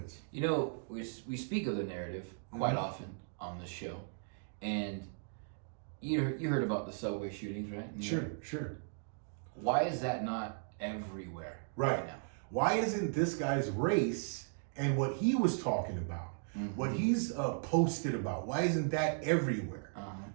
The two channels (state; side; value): silent; left; digital silence